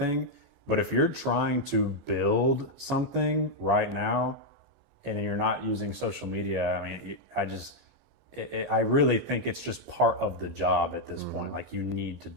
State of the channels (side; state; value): left; late; 1.9 ms